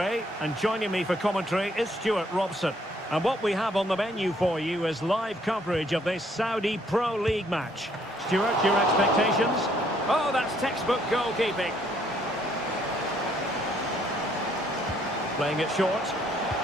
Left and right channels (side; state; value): both; normal; correlation 0.66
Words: and joining me for commentary is Stuart Robson. And what we have on the menu for you is live coverage of this Saudi Pro League match. Stuart, your expectations? Oh, that's textbook goalkeeping. Playing it short.